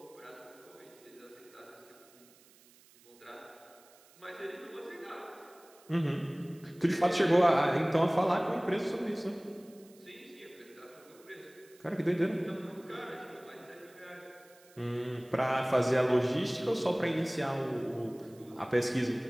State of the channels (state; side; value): noise; right; hiss, 27 dB below the sound